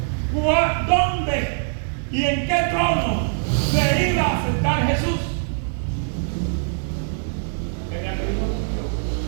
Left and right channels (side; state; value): left; silent; digital silence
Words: ¿dónde y en qué trono se iba a sentar Jesús? En el libro de